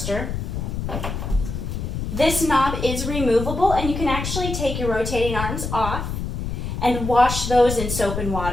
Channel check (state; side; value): noise; left; rumble, 4 dB below the sound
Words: This knob is removable and you can actually take your rotating arms off and wash those in soap and